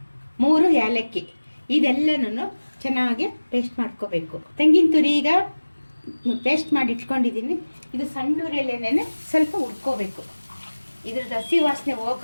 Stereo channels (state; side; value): inverted; both; correlation -1.00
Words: 3 ಏಲಕ್ಕಿ. ಇದೆಲ್ಲನೂ ಚೆನ್ನಾಗಿ ಪೇಸ್ಟ್ ಮಾಡ್ಕೋಬೇಕು. ತೆಂಗಿನ ತುರಿ ಈಗ ಪೇಸ್ಟ್ ಮಾಡಿ ಇಟ್ಕೊಂಡಿದ್ದೀನಿ. ಇದು ಸಣ್ಣ ಉರಿಯಲ್ಲೇನೆ ಸ್ವಲ್ಪ ಹುರ್ಕೋಬೇಕು. ಇದ್ರದ್ದು ಹಸಿ ವಾಸನೆ